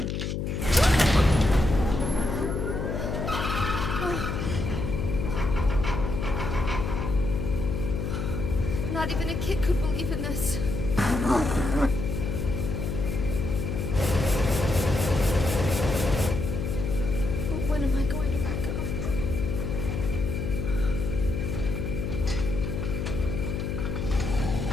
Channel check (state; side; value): noise; left; hum, 2 dB below the sound